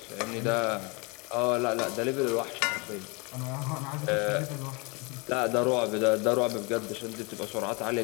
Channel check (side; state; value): right; quieter; 29.5 dB